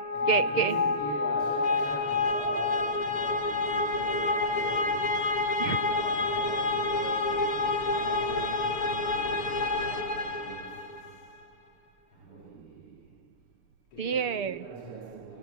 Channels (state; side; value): late; right; 6.8 ms